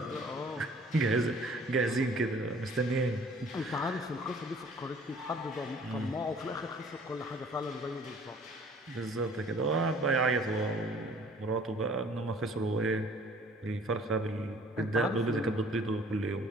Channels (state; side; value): normal; both; correlation 0.53